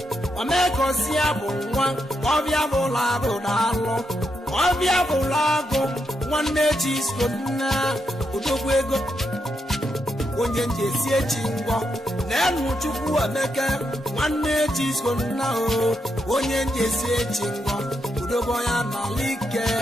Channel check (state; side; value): normal; both; correlation 0.82